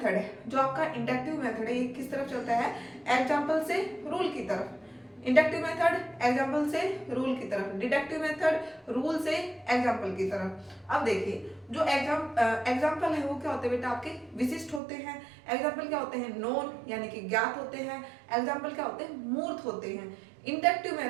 है, जो आपका इंडक्टिव मेथड है, ये किस तरफ चलता है, एग्जाम्पल से रूल की तरफ। इंडक्टिव मेथड एग्जाम्पल से रूल की तरफ, डिडक्टिव मेथड रूल से एग्जाम्पल की तरफ। अब देखिए जो एग्जाम्पल है वो क्या होते हैं बेटा आपके, विशिष्ट होते हैं। एग्जाम्पल क्या होते हैं, नोन यानी कि ज्ञात होते हैं। एग्जाम्पल क्या होते हैं, मूर्त होते हैं।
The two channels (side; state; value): left; drops out; at 14.8 s